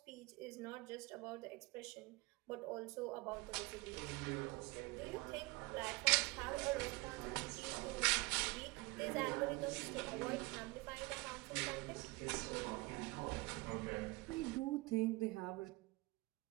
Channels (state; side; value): quieter; left; 24.2 dB